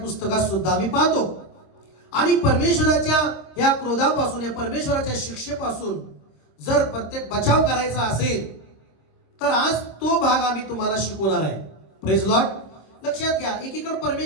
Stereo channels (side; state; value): right; late; 26 ms